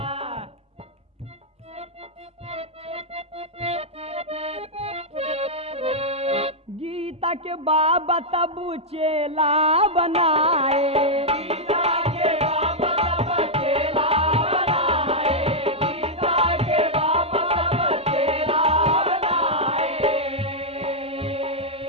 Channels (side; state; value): both; normal; correlation -0.05